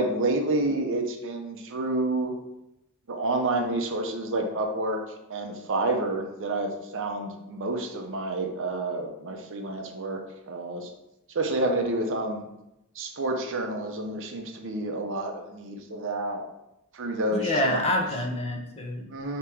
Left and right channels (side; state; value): both; normal; correlation -0.10